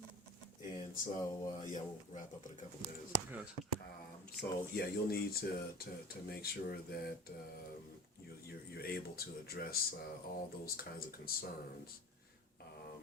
And so, yeah, we'll wrap up in a couple minutes. Gotcha. So, yeah, you'll need to make sure that you're able to address all those kinds of concerns.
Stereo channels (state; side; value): normal; both; correlation 0.37